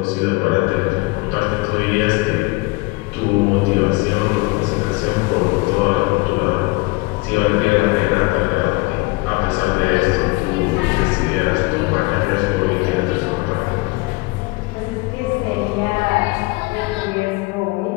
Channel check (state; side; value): quieter; right; 24.3 dB